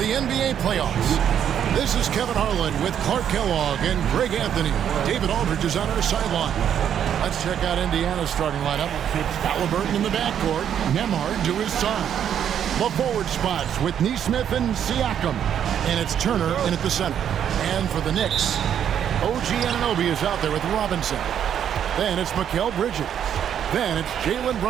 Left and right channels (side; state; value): left; quieter; 9.2 dB